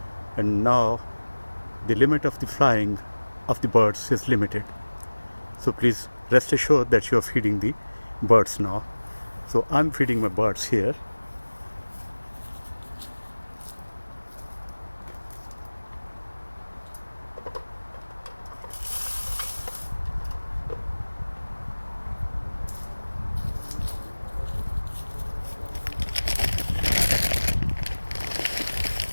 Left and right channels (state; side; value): inverted; both; correlation -1.00